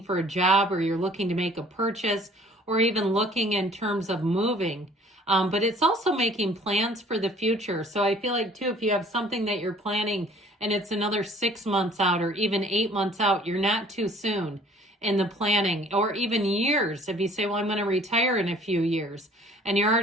for a job or you're looking to make a purchase or even looking in terms of moving. But it's also making plans for the future. So I feel like, too, if you have something that you're planning and it's another 6 months out or even 8 months out, you're not too soon in the planning, or even years. If you say, well, I'm going to retire in a few years, and you're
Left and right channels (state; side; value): normal; both; correlation 0.53